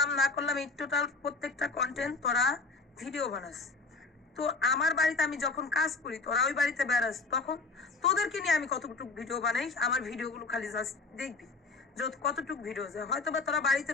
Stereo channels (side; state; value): right; quieter; 3.9 dB